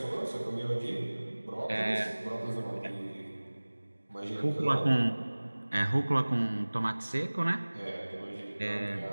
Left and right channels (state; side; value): inverted; both; correlation -1.00